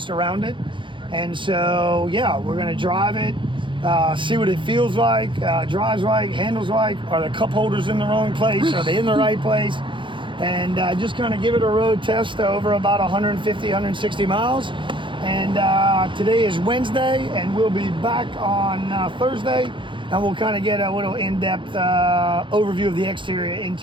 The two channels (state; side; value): late; left; 0.24 ms